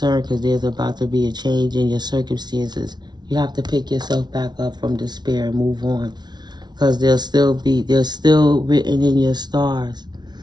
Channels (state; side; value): late; left; 0.20 ms